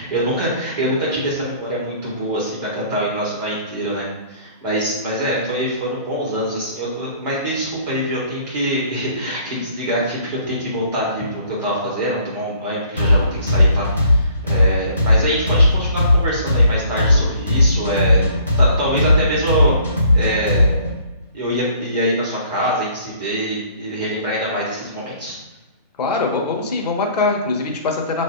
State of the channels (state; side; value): inverted; both; correlation -0.57